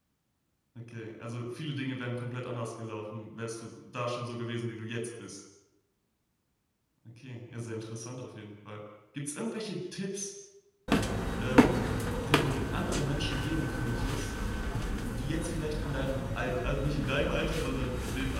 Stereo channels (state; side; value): identical; both; correlation 1.00